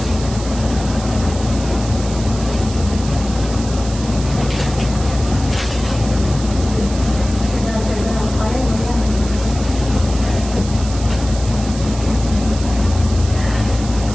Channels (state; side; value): noise; right; hiss, 13 dB below the sound